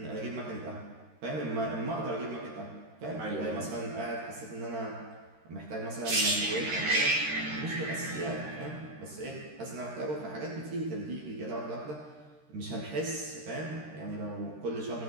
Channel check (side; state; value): left; late; 13 ms